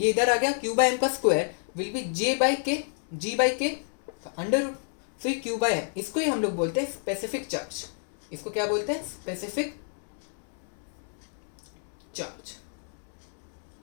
इधर आ गया, Q बाय एम का square will be J by K, G by K under root, so ये Q बाय एम, इसको ही हम लोग बोलते हैं स्पेसिफिक चार्ज, इसको क्या बोलते हैं specific charge,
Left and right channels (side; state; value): right; silent; 58 dB below the other